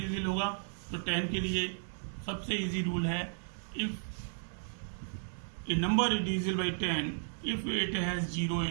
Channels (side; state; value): left; silent; digital silence